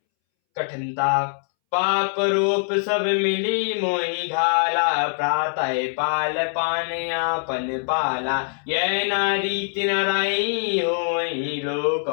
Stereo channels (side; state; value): right; silent; 63 dB below the other